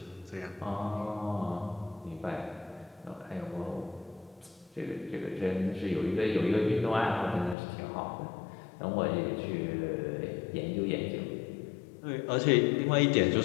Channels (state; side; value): drops out; right; at 7.6 s